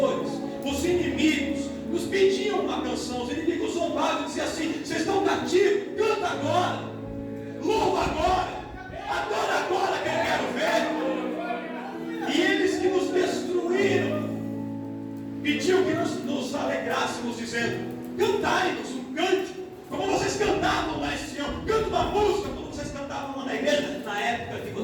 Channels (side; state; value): both; identical; correlation 1.00